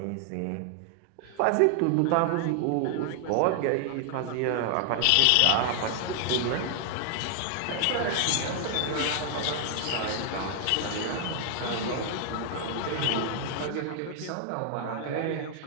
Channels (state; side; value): different; both; correlation 0.00